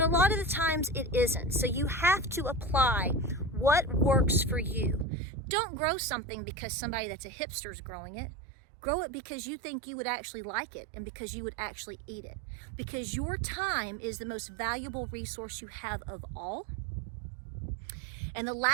a lot of the times it isn't. So you have to apply what works for you. Don't grow something because somebody that's a hipster is growing it. Grow it because you think you would actually like it and because you would actually eat it. Because your time is the most valuable resource you have of all. And the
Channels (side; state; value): left; drops out; at 5.1 s